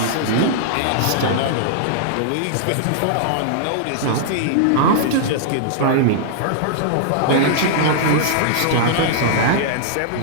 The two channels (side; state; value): both; different; correlation -0.01